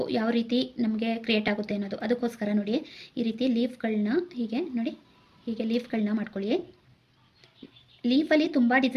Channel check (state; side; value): identical; both; correlation 1.00